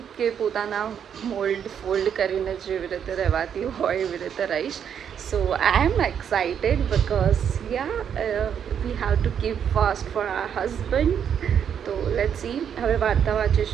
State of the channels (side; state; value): left; quieter; 8.3 dB